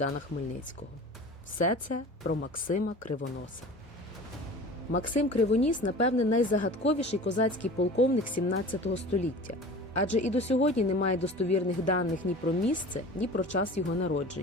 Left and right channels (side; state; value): both; normal; correlation 0.39